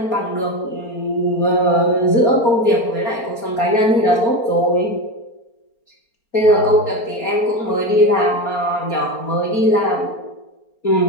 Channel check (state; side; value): late; right; 4.3 ms